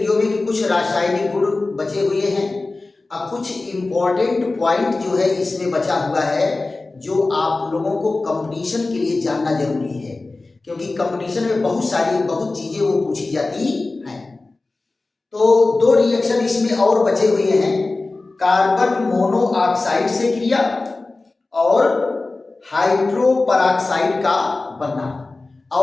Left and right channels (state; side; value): quieter; right; 3.3 dB